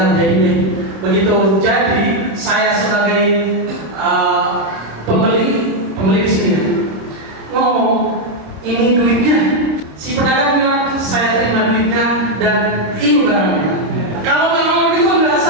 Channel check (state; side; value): late; left; 26 ms